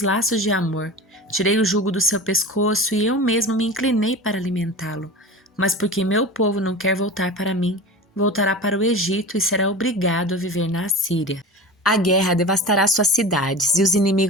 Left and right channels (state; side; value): normal; both; correlation 0.32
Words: laços de amor, tirei o jugo do seu pescoço e eu mesmo me inclinei para alimentá-lo. Mas porque meu povo não quer voltar para mim, voltará para o Egito e será obrigado a viver na Assíria. A guerra devastará suas cidades e os